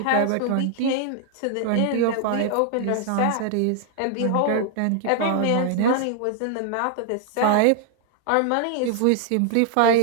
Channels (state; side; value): different; both; correlation 0.00